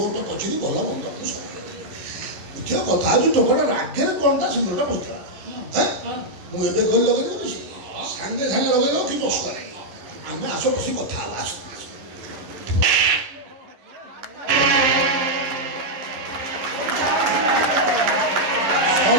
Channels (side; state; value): left; late; 11 ms